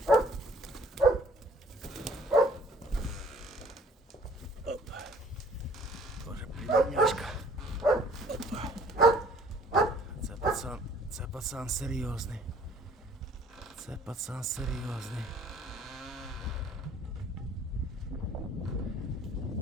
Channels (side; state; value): both; normal; correlation 0.55